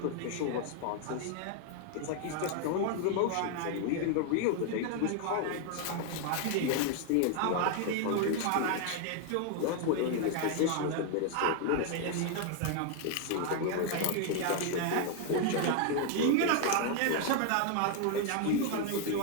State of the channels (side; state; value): both; different; correlation 0.00